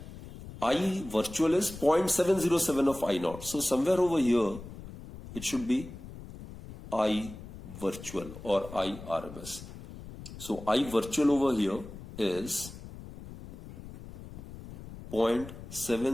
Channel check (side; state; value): left; noise; rumble, 14 dB below the sound